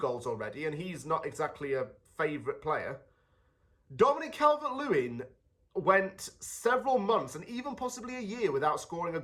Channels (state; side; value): identical; both; correlation 1.00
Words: already, and he's not exactly a favourite player. Dominic Calvert-Lewin went several months and even possibly a year without scoring a